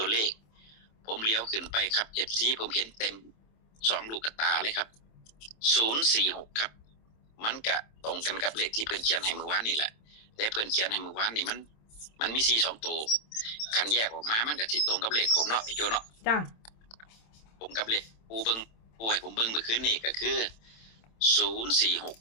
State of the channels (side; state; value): right; late; 27 ms